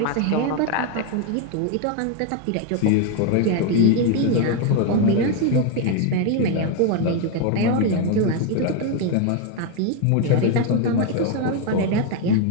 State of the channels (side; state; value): both; different; correlation 0.01